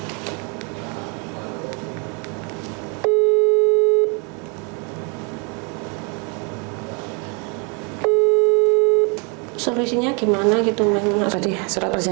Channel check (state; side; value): quieter; left; 34.4 dB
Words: Solusinya gimana gitu Mas? Tadi surat